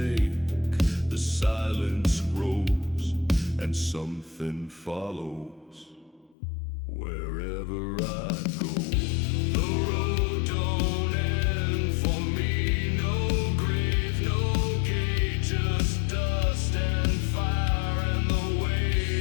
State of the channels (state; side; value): drops out; right; at 6.4 s